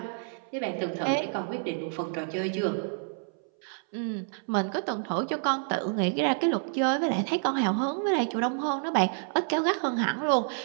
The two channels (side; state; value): left; silent; 59 dB below the other